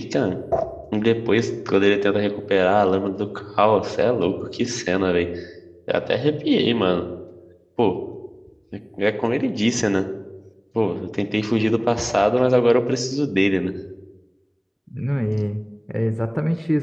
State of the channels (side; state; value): both; identical; correlation 1.00